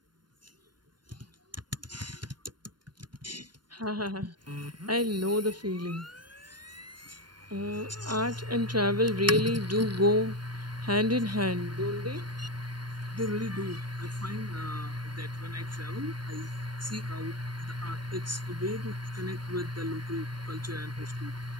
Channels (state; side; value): late; left; 0.71 ms